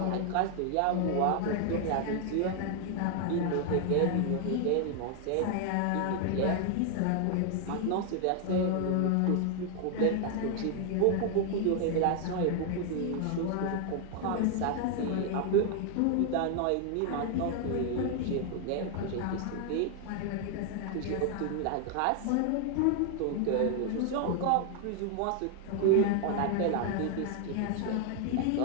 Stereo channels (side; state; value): both; different; correlation 0.00